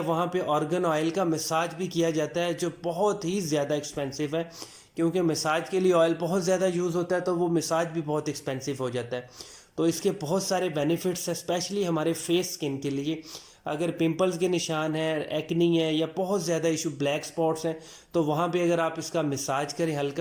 पे ऑर्गन ऑयल का मसाज भी किया जाता है, जो बहुत ही ज़्यादा एक्सपेंसिव है, क्योंकि मसाज के लिए ऑयल बहुत ज़्यादा यूज़ होता है, तो वो मसाज भी बहुत एक्सपेंसिव हो जाता है। तो इसके बहुत सारे बेनिफिट्स हैं, स्पेशली हमारे फेस स्किन के लिए। अगर पिंपल्स के निशान हैं, एक्नी है, या बहुत ज़्यादा इशू ब्लैक स्पॉट्स हैं, तो वहाँ पे अगर आप इसका मसाज करें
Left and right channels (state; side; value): identical; both; correlation 1.00